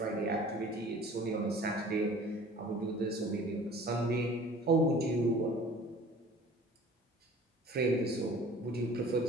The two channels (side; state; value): both; normal; correlation 0.47